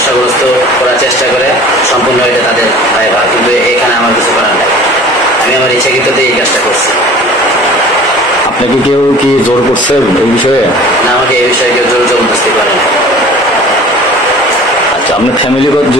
করার চেষ্টা করে সম্পূর্ণ এটা তাদের দায়ভার, কিন্তু এখানে আমার কিছু করার নেই। আমি আমার ইচ্ছাকৃততেই এই কাজটা করছি। আপনাকে কেউ কি জোর করছে এই বিষয়ে? না, আমাকে এই বিষয়ে কেউ জোর জবরদস্তি করে না। আচ্ছা, আপনার ফ্যামিলিগত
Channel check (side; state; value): both; normal; correlation 0.45